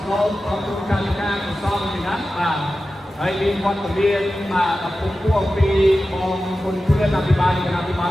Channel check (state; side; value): normal; both; correlation 0.94